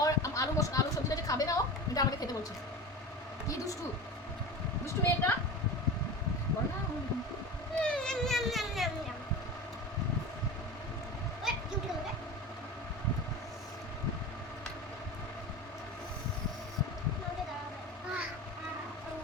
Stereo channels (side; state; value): both; normal; correlation 0.30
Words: ওর আলু সবজিটা যে খাবে না ও, এটা আমাকে খেতে বলছে। কি দুষ্টু দুষ্টু মেয়েটা। বল না। NAM, NAM, NAM, NAM, NAM. ওই, কি উঠে গেল রে? আমাকে দাঁড়াবে।